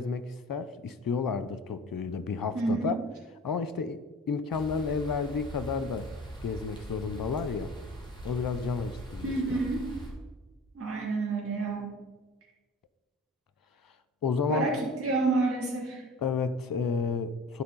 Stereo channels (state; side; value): normal; both; correlation 0.42